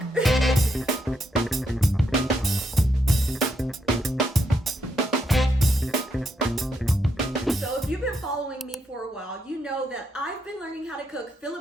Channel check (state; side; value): normal; both; correlation 0.79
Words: So if you've been following me for a while, you know that I've been learning how to cook